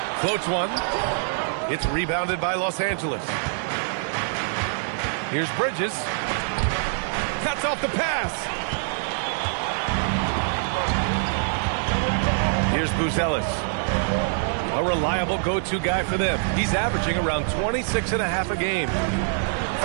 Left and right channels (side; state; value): left; silent; digital silence